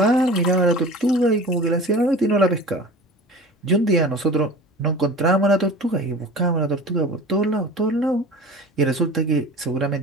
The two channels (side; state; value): both; normal; correlation 0.38